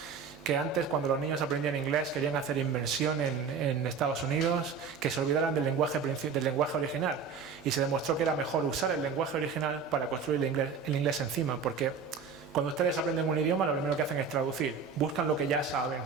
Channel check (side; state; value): left; quieter; 5.8 dB